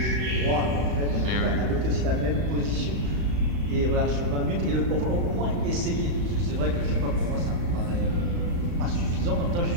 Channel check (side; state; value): left; late; 35 ms